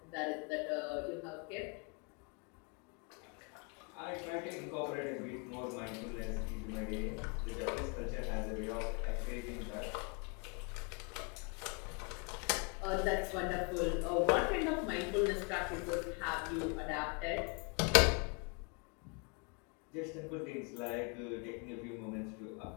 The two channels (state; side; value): quieter; right; 34.5 dB